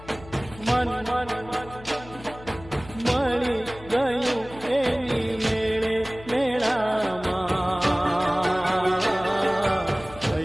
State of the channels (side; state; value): left; noise; hum, 18 dB below the sound